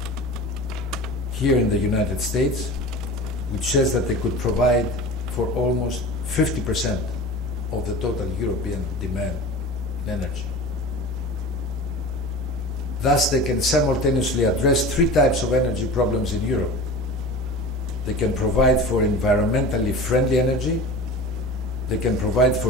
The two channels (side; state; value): both; normal; correlation 0.34